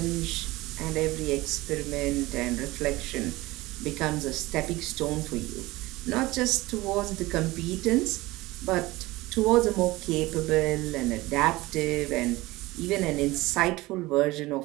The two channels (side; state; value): left; quieter; 19.9 dB